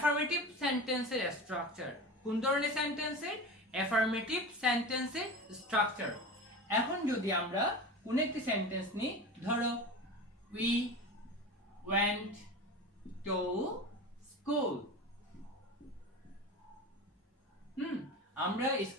সেন্টেন্সের স্ট্রাকচার। কোন ধরনের সেন্টেন্সের? অ্যাফার্মেটিভ সেন্টেন্সের স্ট্রাকচার। এখন যদি আমরা কোন একটি সেন্টেন্স নিই, ধরো উই ওয়েন্ট টু স্কুল। আমরা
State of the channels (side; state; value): both; normal; correlation 0.30